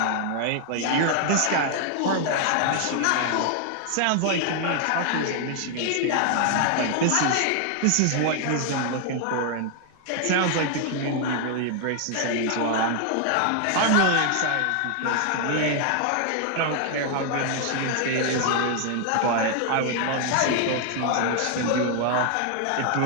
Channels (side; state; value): both; different; correlation 0.00